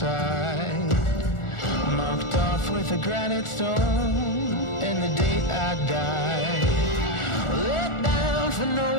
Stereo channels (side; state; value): right; late; 1.4 ms